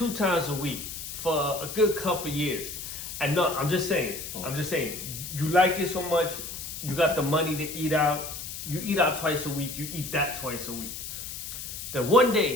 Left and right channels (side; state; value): left; noise; hiss, 8 dB below the sound